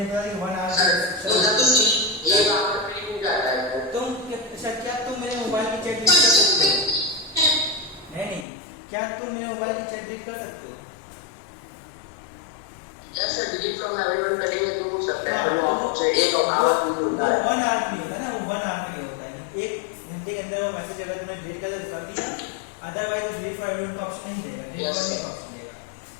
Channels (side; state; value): right; drops out; at 8.5 s